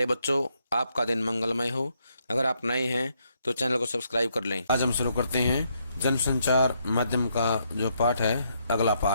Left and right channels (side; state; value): both; inverted; correlation -0.76